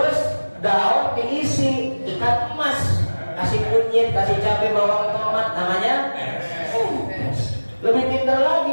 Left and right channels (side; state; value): both; inverted; correlation -1.00